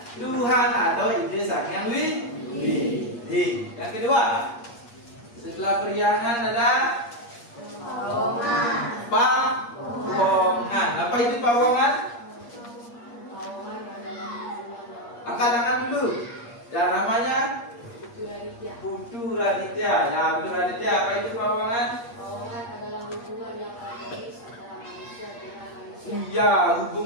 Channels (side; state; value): right; late; 8.5 ms